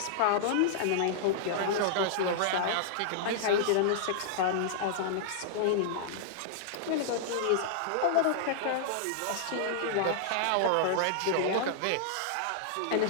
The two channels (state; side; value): different; both; correlation -0.01